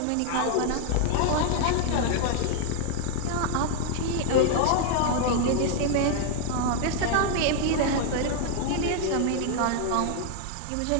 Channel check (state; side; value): different; both; correlation 0.00